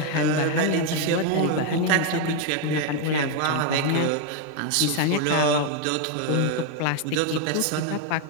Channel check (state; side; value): different; both; correlation 0.01